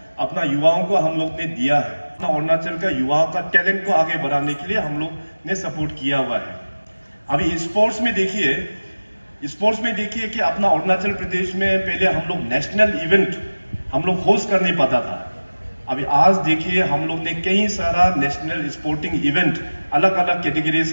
अपना युवाओं को हम लोग ने दिया है। अपना अरुणाचल का युवाओं का टैलेंट को आगे बढ़ाने के लिए हम लोग ने सपोर्ट किया हुआ है। अभी स्पोर्ट्स में देखिए कि अपना अरुणाचल प्रदेश में पहले हम लोग नेशनल इवेंट हम लोग होस्ट कर नहीं पाता था। अभी आज देखिए, हम लोग ने कई सारा नेशनल स्पोर्टिंग इवेंट, अलग अलग कैटेगरीज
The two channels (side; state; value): both; inverted; correlation -1.00